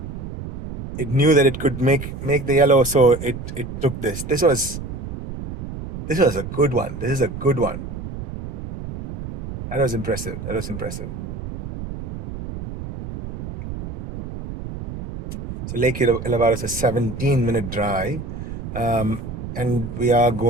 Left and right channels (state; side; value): noise; right; rumble, 8 dB below the sound